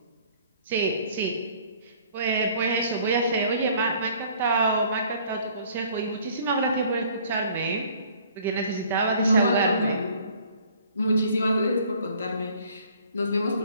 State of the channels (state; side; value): inverted; both; correlation -0.56